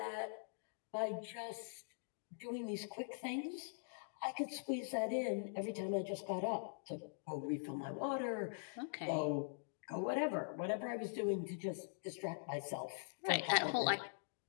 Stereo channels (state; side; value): silent; right; digital silence